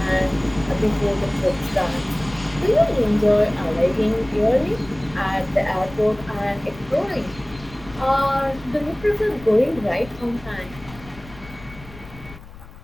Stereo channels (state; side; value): noise; left; rumble, 18 dB below the sound